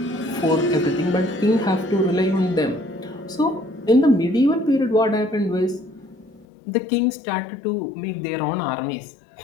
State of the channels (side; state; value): right; drops out; at 6.5 s